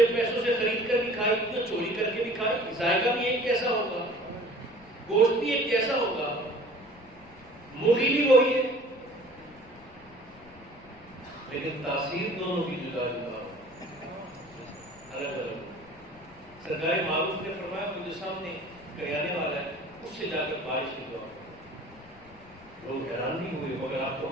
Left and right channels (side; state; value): left; noise; rumble, 24 dB below the sound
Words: پیسوں سے خرید کر بھی کھائے، جو چوری کر کے بھی کھائے، ذائقہ بھی ایک جیسا ہوگا، گوشت بھی ایک جیسا ہوگا، مرغی بھی وہی ہے، لیکن تاثیر دونوں کی جدا جدا الگ الگ۔ سرکار معروف نے فرمایا وہ جو سامنے کریانے والا ہے اس سے جا کر بارش کی دعا۔ لوگ حیران بھی ہوئے، مگر آپ کا